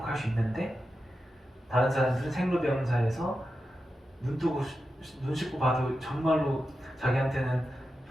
수 있는데 다른 사람들은 생로병사에서 눈 씻고 봐도 정말로 자기한테는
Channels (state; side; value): normal; both; correlation 0.90